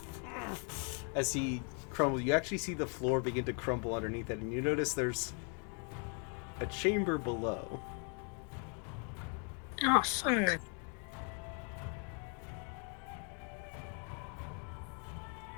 As he crumbles, you actually see the floor begin to crumble underneath it, and you notice there's a chamber below. Oh, fuck.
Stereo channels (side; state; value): right; quieter; 40.0 dB